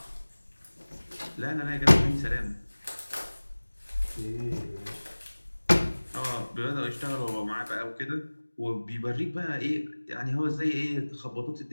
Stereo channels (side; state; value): both; inverted; correlation -1.00